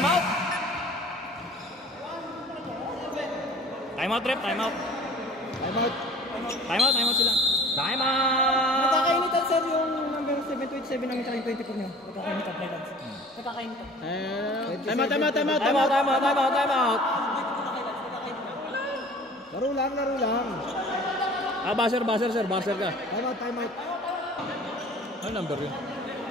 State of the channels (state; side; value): normal; both; correlation 0.46